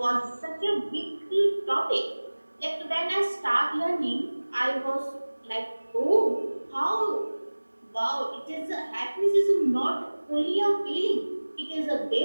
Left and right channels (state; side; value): inverted; both; correlation -1.00